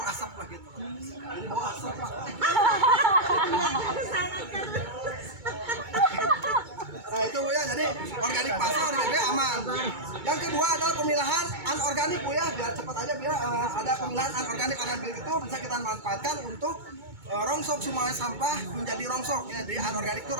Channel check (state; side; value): late; left; 2.2 ms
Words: asap lah gitu. Jadi bau asap lah. Nah itu bu ya, jadi organik pasar organik aman. Yang kedua adalah pemilahan anorganik bu ya, biar cepat aja biar ada pemilahan anorganik itu bisa kita manfaatkan untuk rongsok semua sampah menjadi rongsok ya, jadi anorganik itu